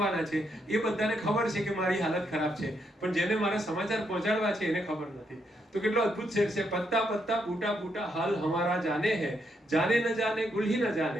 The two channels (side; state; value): both; normal; correlation 0.78